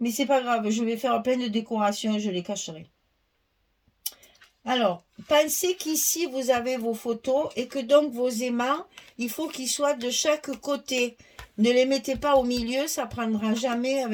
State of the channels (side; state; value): both; identical; correlation 1.00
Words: c'est pas grave, je vais faire plein de décorations et je les cacherai. Alors, pensez qu'ici, vous avez vos photos et que donc vos aimants, il faut qu'ils soient de chaque côté. Ne les mettez pas au milieu, ça prendra jamais